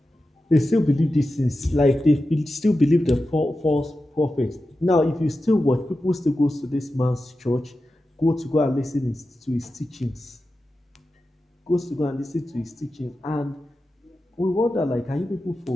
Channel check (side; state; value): both; normal; correlation 0.92